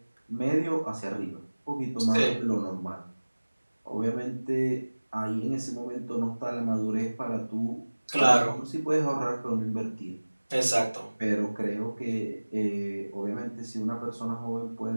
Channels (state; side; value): inverted; both; correlation -1.00